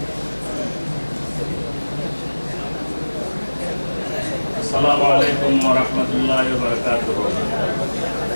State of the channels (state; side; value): inverted; both; correlation -1.00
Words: আসসালামু আলাইকুম ওয়া রাহমাতুল্লাহি ওয়া বারাকাতুহু।